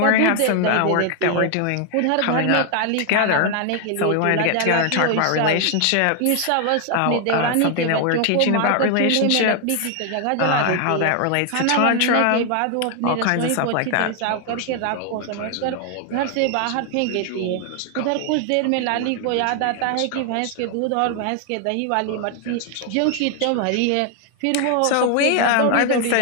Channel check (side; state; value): both; different; correlation 0.00